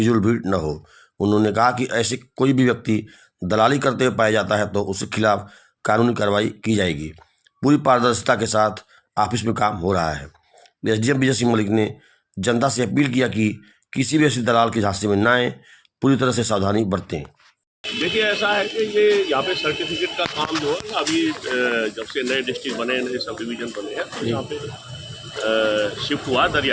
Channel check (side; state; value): both; identical; correlation 1.00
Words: भीड़ न हो। उन्होंने कहा कि ऐसे कोई भी व्यक्ति दलाली करते हुए पाया जाता है तो उसके खिलाफ कानूनी कार्रवाई की जाएगी। पूरी पारदर्शिता के साथ ऑफिस में काम हो रहा है। एसडीएम विजय सिंह मलिक ने जनता से अपील किया कि किसी भी ऐसे दलाल के झांसे में न आए, पूरी तरह से सावधानी बरतें। देखिए, ऐसा है कि ये यहाँ पे सर्टिफिकेट का काम जो है अभी जब से नए डिस्ट्रिक्ट बने, नए सब डिवीजन बने हैं, तो यहाँ पे शिफ्ट हुआ